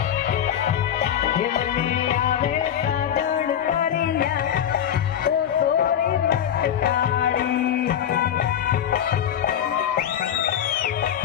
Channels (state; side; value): quieter; right; 9.6 dB